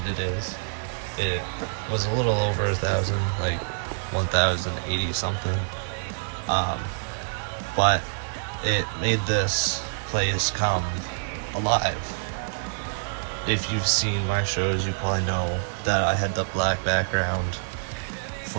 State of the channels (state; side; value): silent; left; digital silence